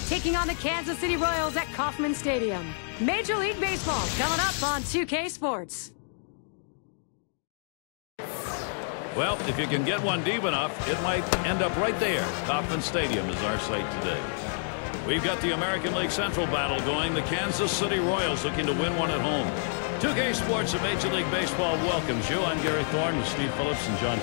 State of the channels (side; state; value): right; silent; digital silence